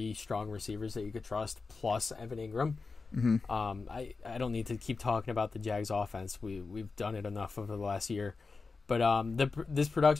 strong receivers that you could trust, plus Evan Ingram. Mm-hmm. I don't need to keep talking about the Jags offense. We've done it enough over the last year. But this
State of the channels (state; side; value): quieter; right; 4.3 dB